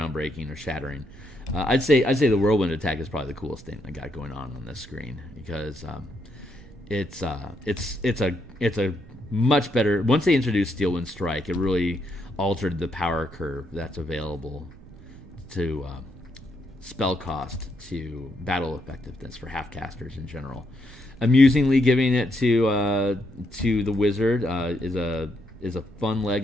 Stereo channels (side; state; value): right; noise; rumble, 19 dB below the sound